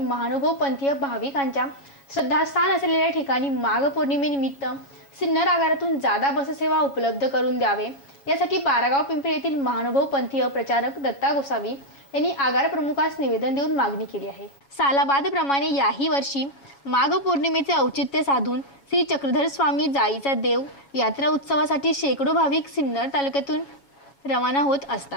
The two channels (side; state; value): right; late; 7.2 ms